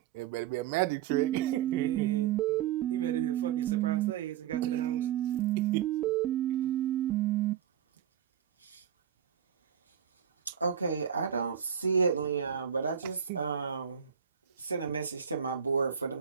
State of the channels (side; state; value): left; quieter; 9.0 dB